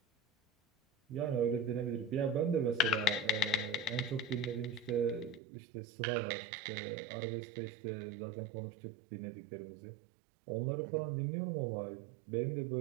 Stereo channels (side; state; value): left; drops out; at 5.4 s